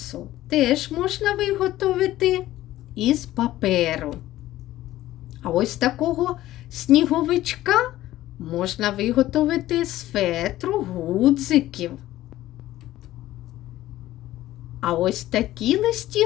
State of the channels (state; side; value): quieter; right; 15.0 dB